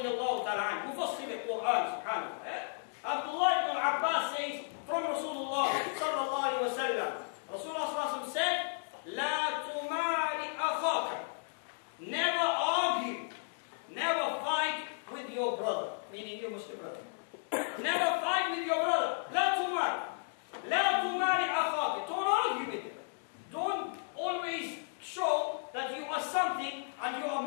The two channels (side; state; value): right; silent; digital silence